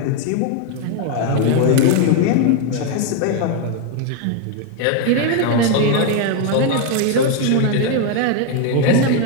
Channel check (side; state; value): both; different; correlation 0.01